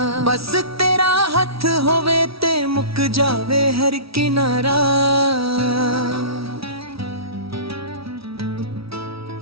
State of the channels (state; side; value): late; left; 0.76 ms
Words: ਬਸ ਤੇਰਾ ਹੱਥ ਹੋਵੇ ਤੇ ਮੁੱਕ ਜਾਵੇ ਹਰ ਕਿਨਾਰਾ।